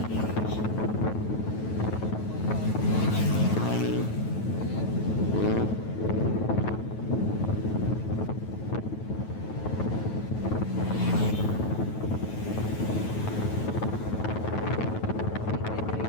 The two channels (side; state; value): right; late; 9.2 ms